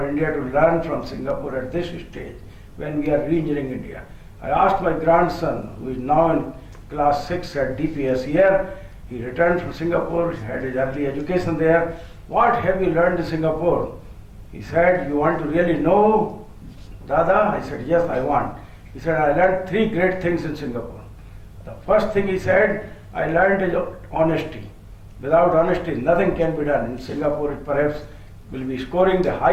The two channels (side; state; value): both; identical; correlation 1.00